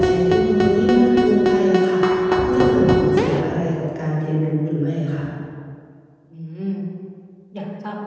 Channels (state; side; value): identical; both; correlation 1.00